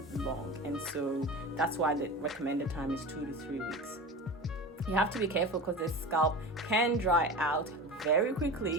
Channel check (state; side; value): normal; both; correlation 0.31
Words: long. And so that's why the recommended time is 2 to 3 weeks. You have to be careful because the scalp can dry out very